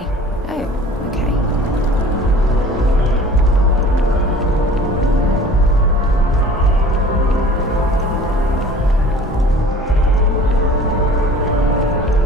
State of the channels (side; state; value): both; normal; correlation 0.46